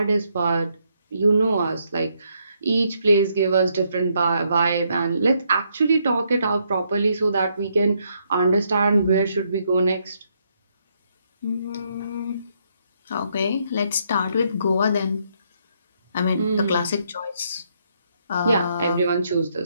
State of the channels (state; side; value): inverted; both; correlation -0.74